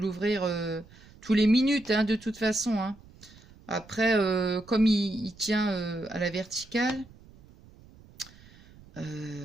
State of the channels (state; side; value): noise; right; rumble, 23 dB below the sound